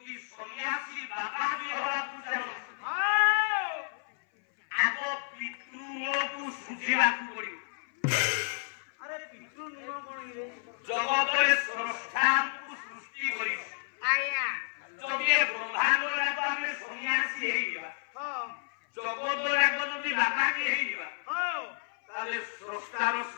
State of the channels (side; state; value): right; silent; 57 dB below the other